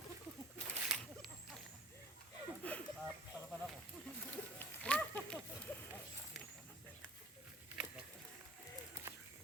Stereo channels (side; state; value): both; normal; correlation 0.46